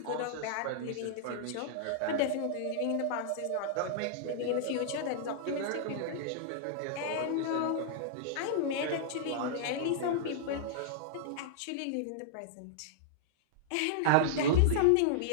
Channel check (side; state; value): both; different; correlation -0.01